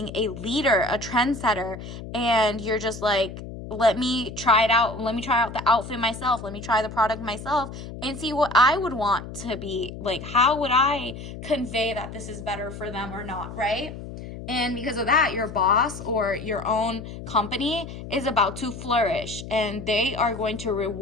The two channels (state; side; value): noise; left; hum, 11 dB below the sound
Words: a leader, a trendsetter, and you're just like, let me try it out. Let me try out the outfit myself. Let me try the product myself and see what I would want to be like. How would I convey that this is better for them or not, right? And because of that, your boss or your own company is about to flourish, and they are going to